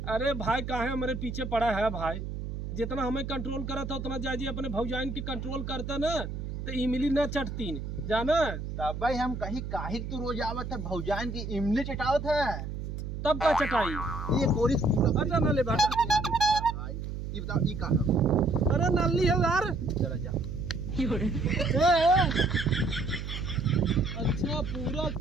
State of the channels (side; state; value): right; noise; hum, 6 dB below the sound